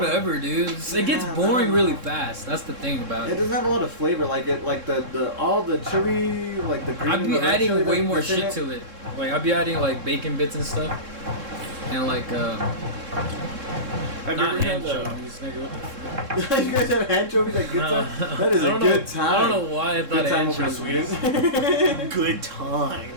dude. It gets Yeah, boring no. really fast. That's the thing about It it. doesn't have a lot of flavor, like the all the chili, like the green. I'd be the red adding chili way that's more in shit it. to it. Like I'd be adding like bacon bits and stuff, and like Have not you ever had anchovies. Nigga, what the fuck? You guys have anchovies at Good No. Time? That is I a don't good know- time. I don't know why I thought Good time over in anchovies. Sweden. Good Time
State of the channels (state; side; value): late; left; 3.7 ms